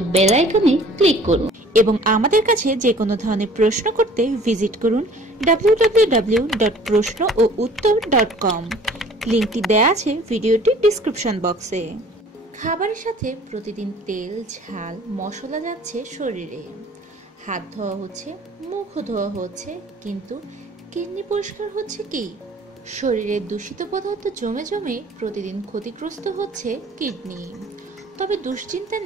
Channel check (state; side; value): normal; both; correlation 0.51